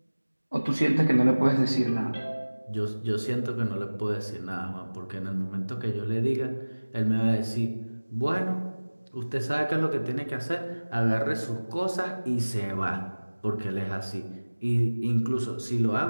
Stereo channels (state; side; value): inverted; both; correlation -1.00